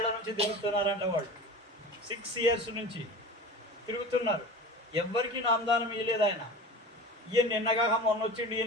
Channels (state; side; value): normal; both; correlation 0.34